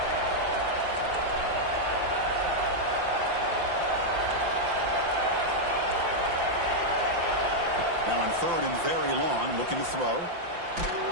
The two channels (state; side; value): late; left; 5.8 ms